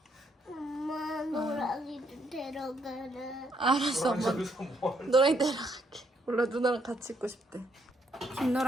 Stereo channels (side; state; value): both; normal; correlation 0.73